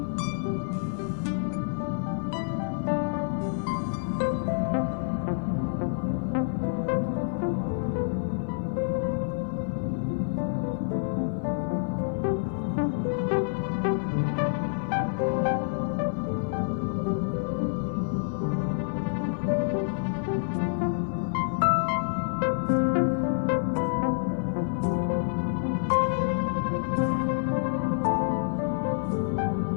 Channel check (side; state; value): right; silent; 55 dB below the other